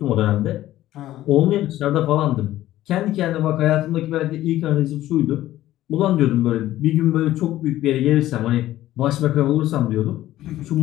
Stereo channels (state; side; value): quieter; right; 14.4 dB